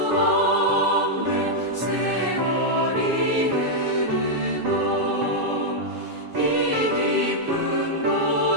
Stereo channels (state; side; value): late; left; 7.3 ms